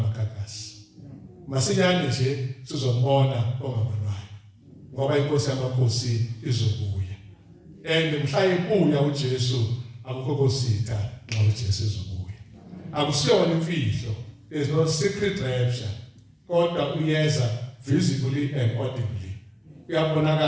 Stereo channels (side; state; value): both; identical; correlation 1.00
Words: Masinyane nje sizombona ongabonwayo. Ngoba inkosi yamakhosi izobuya. And mhla ibuya uJesu akukho kositha nxa uJesu ezobuya. Akusiyona imfihlo. There's no secret rapture. Kodwa uyeza visibly and audibly.